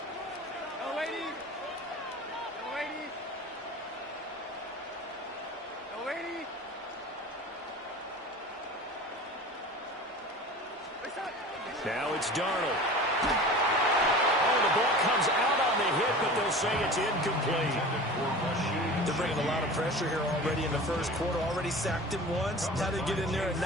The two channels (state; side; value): normal; both; correlation 0.37